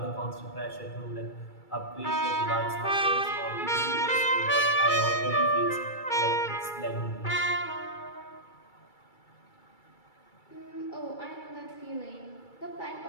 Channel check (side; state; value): right; late; 2.3 ms